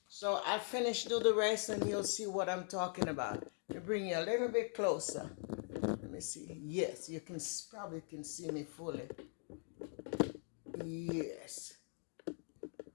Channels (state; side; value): silent; right; 50 dB below the other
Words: So I'll finish, do the rest, and you'll see what I'm talking about. Let me bring you a little bit closer. Let me see. Yes, you can probably can see me fully. Yes.